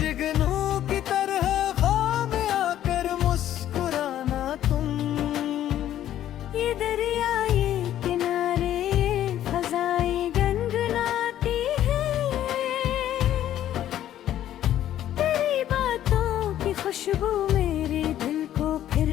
की तरह दरिया ये किनारे फजाएं गनगनाती है। तेरी बातों की खुशबू मेरे दिल को फिर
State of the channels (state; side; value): quieter; right; 11.9 dB